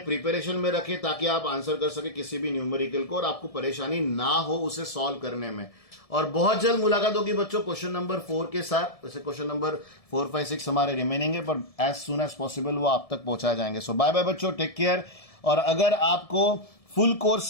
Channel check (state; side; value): late; right; 1.7 ms